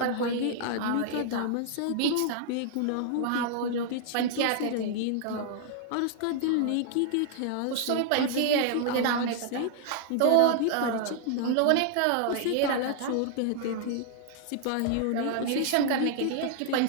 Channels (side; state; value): both; different; correlation 0.00